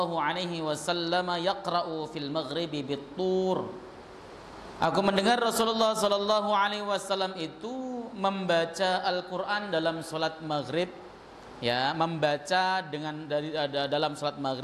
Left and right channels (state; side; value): identical; both; correlation 1.00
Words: alaihi wasallam yaqra'u fil maghribi bit-tur. Aku mendengar Rasulullah sallallahu alaihi wasallam itu membaca Al-Qur'an dalam salat maghrib, ya, membaca dengan dalam salat